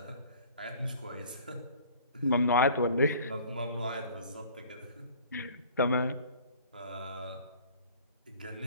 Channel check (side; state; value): both; inverted; correlation -0.49